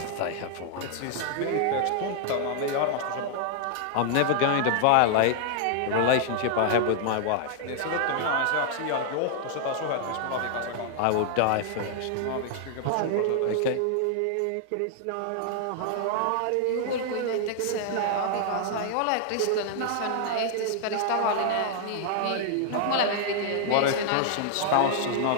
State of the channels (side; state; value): both; different; correlation 0.00